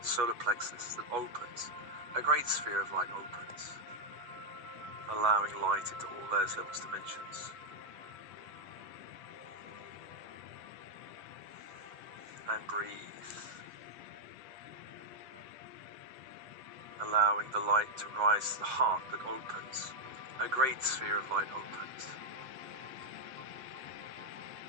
solar plexus that opens, a great sphere of light opens, allowing light into all layers, levels, dimensions. And breathe. Allowing the light to rise to the heart that opens, a great sphere of light opens.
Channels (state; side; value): late; left; 7.5 ms